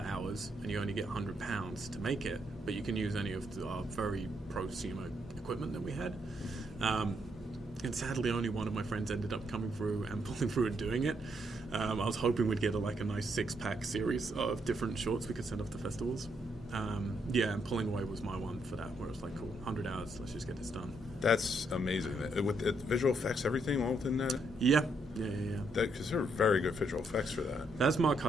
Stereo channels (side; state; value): both; normal; correlation 0.75